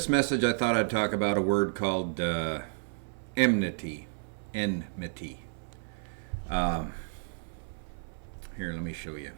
message I thought I'd talk about a word called enmity. Enmity. Here, let me show you.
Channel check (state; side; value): silent; left; 57 dB below the other